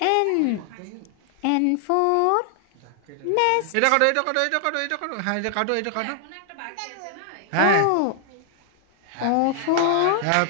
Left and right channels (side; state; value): both; different; correlation 0.00